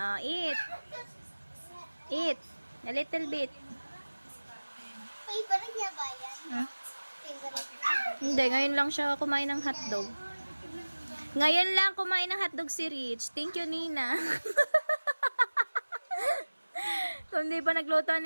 Eat. Eat. A little bit. Favorite niya ba yan? Favorite. Hindi, ngayon lang siya kumain ng hotdog. Ngayon lang kumain ng hotdog si Rich. Thank you, Nina. Kung di pa nagluto ang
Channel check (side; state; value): both; inverted; correlation -1.00